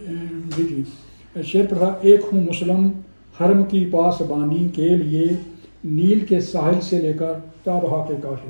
جی شعر پڑھا, ایک ہوں مسلم حرم کی پاسبانی کے لیے, نیل کے ساحل سے لے کر تابہا کے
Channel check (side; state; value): both; inverted; correlation -1.00